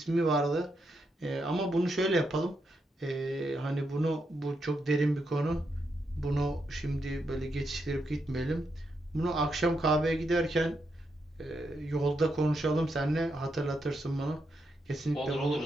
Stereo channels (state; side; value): normal; both; correlation 0.82